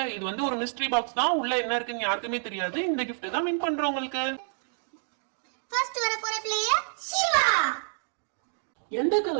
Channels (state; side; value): silent; left; 59 dB below the other